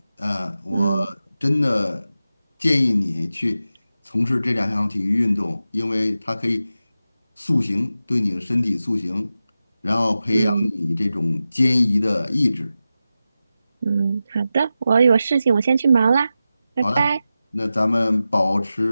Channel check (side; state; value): both; inverted; correlation -0.93